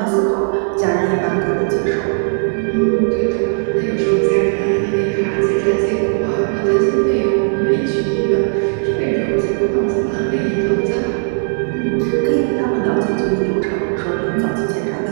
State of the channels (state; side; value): silent; left; 65 dB below the other